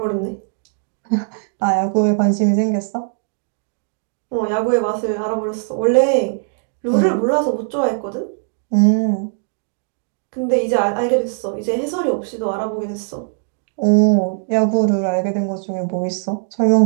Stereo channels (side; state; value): left; silent; 66 dB below the other